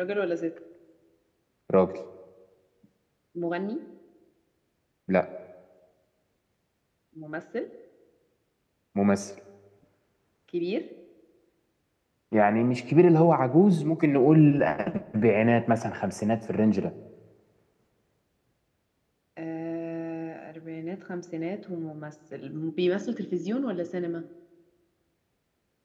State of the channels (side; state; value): both; identical; correlation 1.00